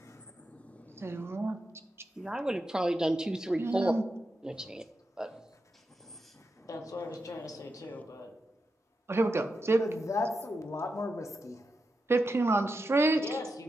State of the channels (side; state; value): both; normal; correlation 0.88